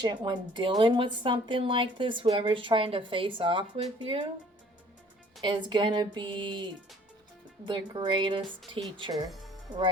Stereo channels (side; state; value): both; normal; correlation 0.55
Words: dealing with something like this, whoever's trying to face off with you, is going to be the greatest teacher